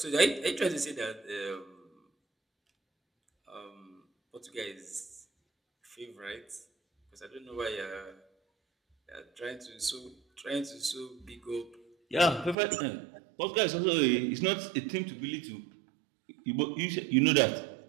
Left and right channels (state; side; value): drops out; left; at 12.6 s